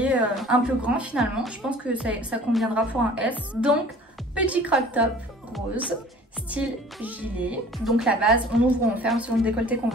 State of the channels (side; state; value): both; normal; correlation 0.48